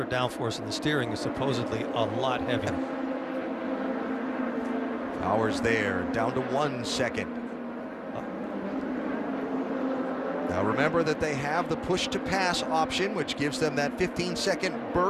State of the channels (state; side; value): identical; both; correlation 1.00